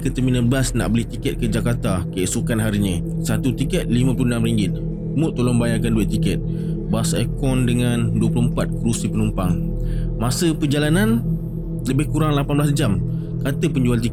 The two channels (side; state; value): both; identical; correlation 1.00